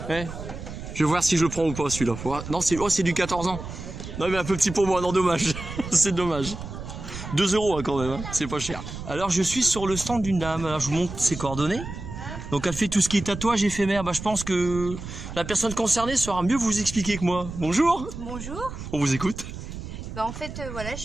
Ouais. Je vais voir si je le prends ou pas celui-là. Non, c'est du 14 ans. Non, mais un peu petit pour moi, non, dommage. C'est dommage. 2 € hein, quand même, hein. C'est pas cher. Alors, je suis sur le stand d'une dame. Alors, je vous montre ses coordonnées. Donc, elle fait tout ce qui est tatouage éphémère. Bah, je pense que la personne concernée saura mieux vous expliquer que moi. Bonjour. Bonjour. On vous écoute. Bah, en fait, voilà, je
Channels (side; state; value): right; noise; rumble, 9 dB below the sound